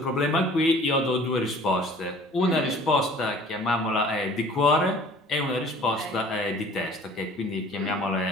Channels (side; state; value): both; normal; correlation 0.49